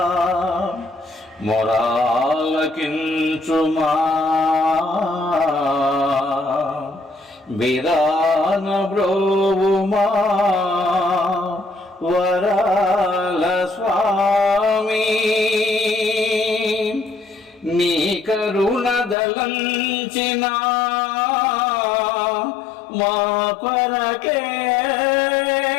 మొరాలకించుమా విరాన బ్రోవుమా వరాల స్వామి నీ కరుణ దలంచిన మా కొరకే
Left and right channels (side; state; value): right; drops out; at 19.2 s